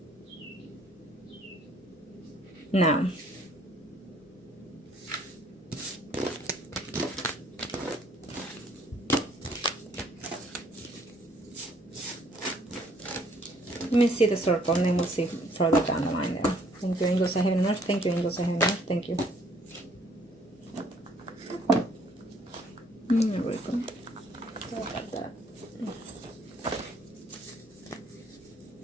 Now, let me see the circle, and then we'll see further down the line there. Thank you, angels of heaven and earth. Thank you, angels of heaven and earth. Thank you. There we go. Sorry about that.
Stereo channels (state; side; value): normal; both; correlation 0.62